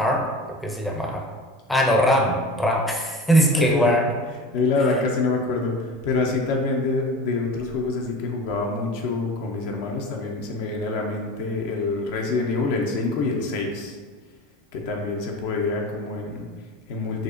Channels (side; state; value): both; normal; correlation 0.35